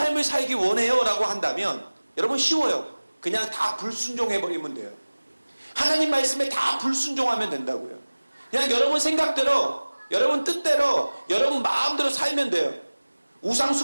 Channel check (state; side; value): inverted; both; correlation -1.00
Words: 살기 원해요 라고 한다면 여러분 쉬워요. 그냥 다 불순종해버리면 돼요. 하나님 말씀에 다 불순종하면 된다고요. 그냥 여러분 생각대로, 여러분 뜻대로, 여러분 마음대로 살면 돼요. 우상